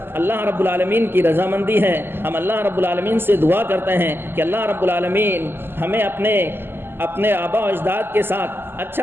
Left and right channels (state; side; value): late; left; 0.11 ms